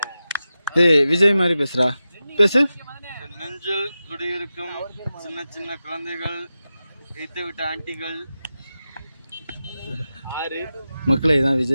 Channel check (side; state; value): both; inverted; correlation -0.92